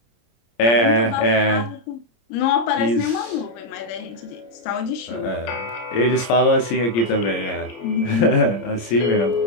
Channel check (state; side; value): late; right; 26 ms